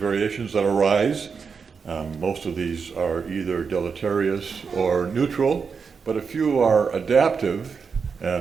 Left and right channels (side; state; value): left; quieter; 5.6 dB